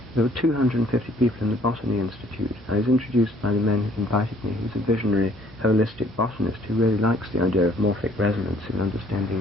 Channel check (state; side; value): normal; both; correlation 0.60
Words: were 250 people in the Botany Institute. I was introduced by the man who invited me, who's a visionary, holistic botanist who really likes the idea of morphic resonance in